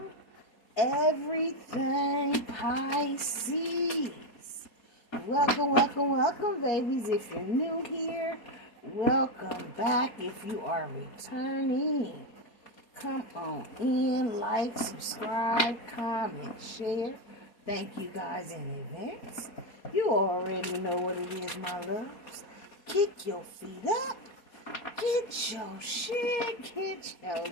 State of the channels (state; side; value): late; right; 4.2 ms